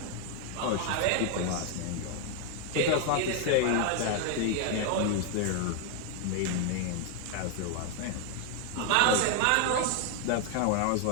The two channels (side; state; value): both; different; correlation 0.01